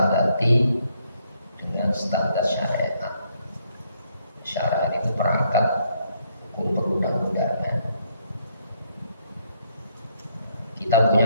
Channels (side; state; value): both; inverted; correlation -0.71